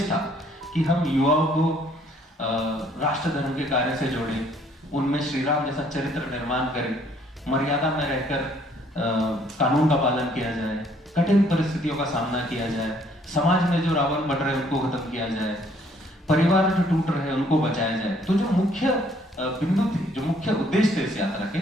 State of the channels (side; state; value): both; normal; correlation 0.63